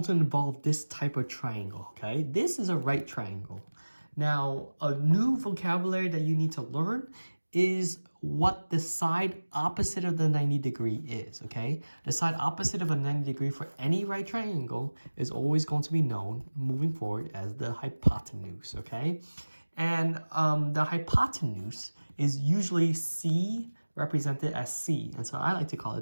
to involve this type of triangle, okay? This is a right triangle. Now, a new vocabulary that you need to learn is what the side opposite of the 90 degree is, okay? The side opposite of a 90 degree for any right triangle is always going to be known moving forward as the hypotenuse, okay? And the hypotenuse is usually C represented as C, and so I like to call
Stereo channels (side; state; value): both; inverted; correlation -1.00